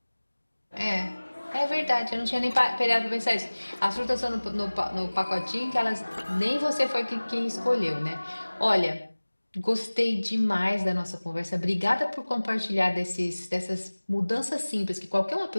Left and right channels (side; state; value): both; inverted; correlation -1.00